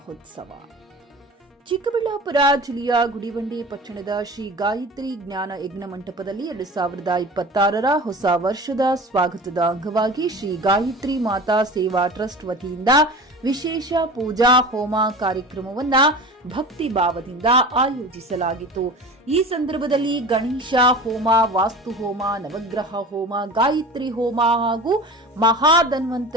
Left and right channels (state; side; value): normal; both; correlation 0.36